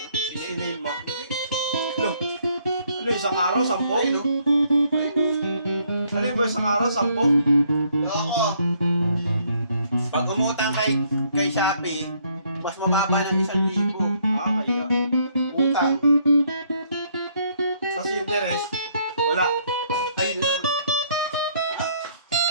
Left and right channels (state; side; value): inverted; both; correlation -0.67